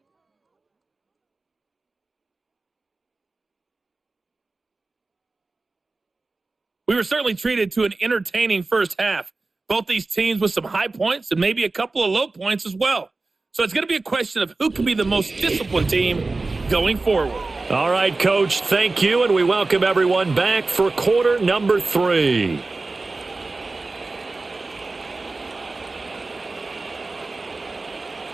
We were certainly treated to an entertaining first half. Both these teams with some high points and maybe a couple of low points as well. So it's going to be a question of who can be the most disciplined team going forward. All right, Coach, thank you, and we welcome everyone back for quarter number 3.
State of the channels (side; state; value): left; quieter; 3.5 dB